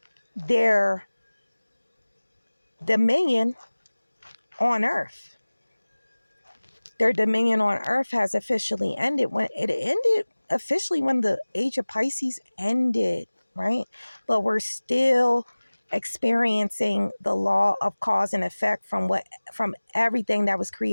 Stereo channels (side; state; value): both; inverted; correlation -1.00